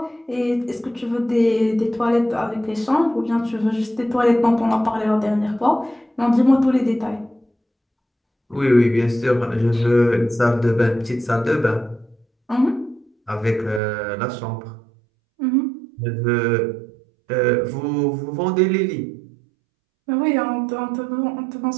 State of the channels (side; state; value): left; drops out; at 13.8 s